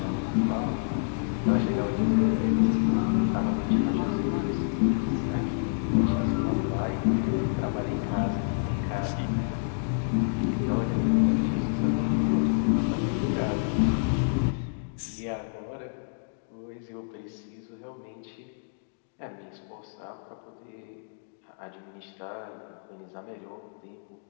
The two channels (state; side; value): silent; right; digital silence